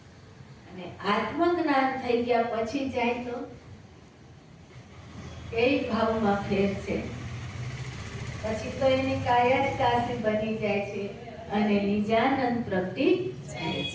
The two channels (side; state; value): both; identical; correlation 1.00